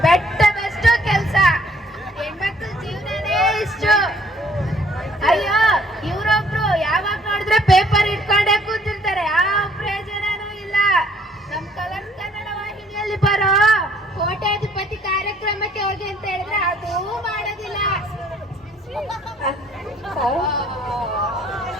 ಬೆಟ್ಟದಷ್ಟು ಕೆಲ್ಸ, ಹೆಣ್ಮಕ್ಳ ಜೀವನನೇ ಇಷ್ಟು. ಅಯ್ಯೋ, ಇವ್ರೊಬ್ರು ಯಾವಾಗ ನೋಡಿದ್ರೆ ಪೇಪರ್ ಇಟ್ಕೊಂಡೇ ಕೂತಿರ್ತಾರೆ, ಯಾವ ಪ್ರಯೋಜನನೂ ಇಲ್ಲ. ನಮ್ ಕಲರ್ಸ್ ಕನ್ನಡ ವಾಹಿನಿಯಲ್ಲಿ ಬರೋ ಕೋಟ್ಯಾಧಿಪತಿ ಕಾರ್ಯಕ್ರಮಕ್ಕೆ ಹೋಗಿ ಅಂತ ಹೇಳಿದ್ರೆ ಅದೂ ಮಾಡೋದಿಲ್ಲ.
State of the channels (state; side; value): normal; both; correlation 0.62